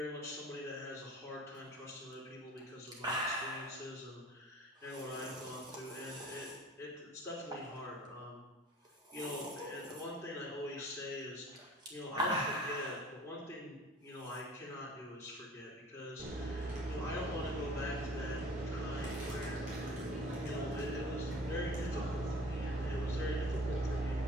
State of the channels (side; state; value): both; normal; correlation 0.48